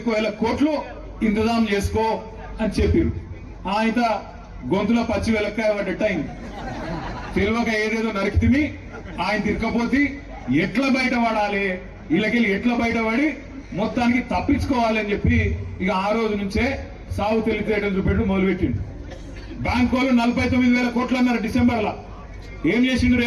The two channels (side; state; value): both; identical; correlation 1.00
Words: కోట్లు ఇంతజాం చేసుకో అని చెప్పారు. ఆయన గొంతులో పచ్చి వెలక్కాయ పడ్డట్టు అయింది. తెలివక ఏదేదో నరికితిమి, ఆయన తిరగపోతే ఎట్లా బయటపడాలి, వీళ్ళకెళ్ళి ఎట్లా బయటపడి మొత్తానికి తప్పించుకోవాలి అని చెప్పి ఇక ఆ రోజు నుంచే సాగు తెలివితేటలు చూపెట్టు మొదలుపెట్టిండు. బ్యాంకు వాళ్ళు 49,000 కోట్లు అన్నారు డిసెంబర్లో. ఏం చేసిండు